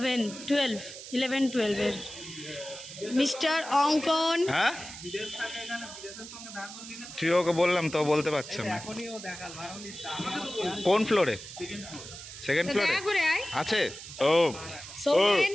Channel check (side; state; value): right; noise; hiss, 13 dB below the sound